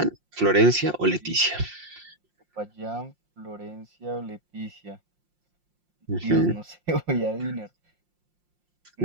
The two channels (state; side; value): late; left; 5.6 ms